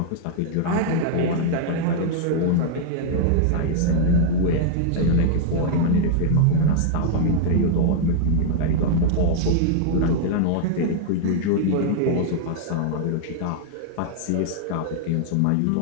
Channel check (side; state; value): both; different; correlation -0.01